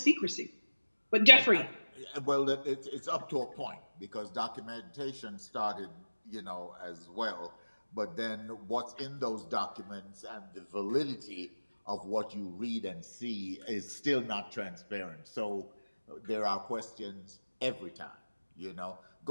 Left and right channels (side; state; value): both; inverted; correlation -1.00